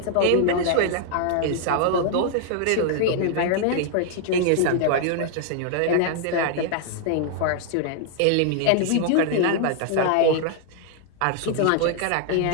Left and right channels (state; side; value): different; both; correlation 0.00